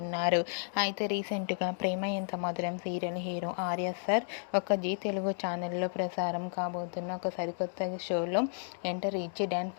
ఉన్నారు. అయితే రీసెంట్గా ప్రేమ ఎంత మధురం సీరియల్ హీరో ఆర్య సార్ ఒక జీ తెలుగు ఛానల్లో ప్రసారం కాబోతున్న ఒక సరికొత్త షోలో ఎంటర్ ఇచ్చి డ్యాన్స్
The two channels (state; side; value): silent; right; digital silence